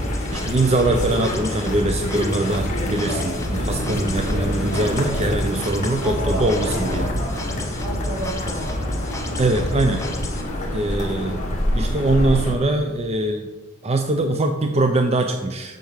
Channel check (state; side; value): normal; both; correlation 0.63